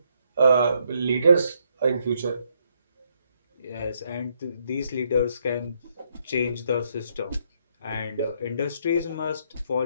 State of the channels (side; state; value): both; inverted; correlation -0.74